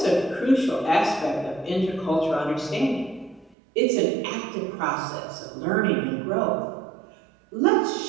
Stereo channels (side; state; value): left; drops out; at 3.6 s